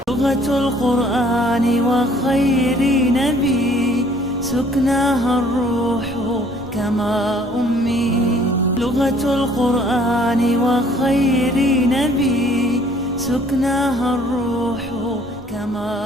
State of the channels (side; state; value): both; normal; correlation 0.58